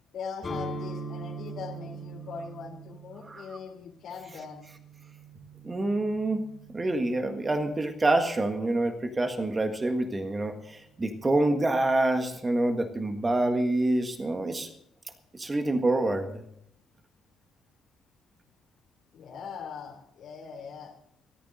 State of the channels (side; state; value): both; normal; correlation 0.91